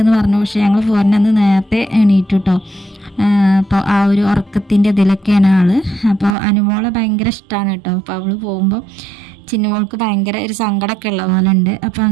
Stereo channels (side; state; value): left; drops out; at 6.4 s